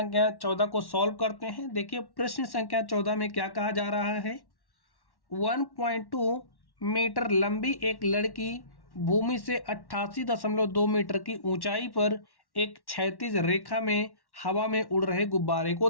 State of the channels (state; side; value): late; right; 1.1 ms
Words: 14 को सॉल्व करते हैं। देखिए प्रश्न संख्या 14 में क्या कहा जा रहा है। 1.2 मीटर लंबी एक लड़की भूमि से 88.2 मीटर की ऊंचाई पर एक क्षैतिज रेखा में हवा में उड़ रहे गुब्बारे को